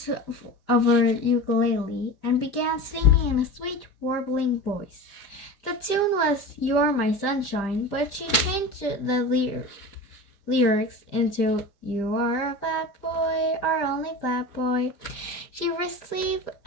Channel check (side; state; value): right; late; 5.0 ms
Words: of her ukulele and began singing in a sweet, warbling voice. The tune was "You're My Sunshine," but she changed the lyrics into "You are a fat boy, our only fat boy." She received